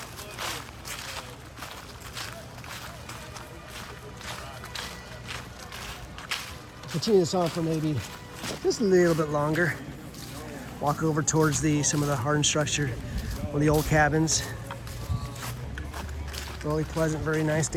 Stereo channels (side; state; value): both; identical; correlation 1.00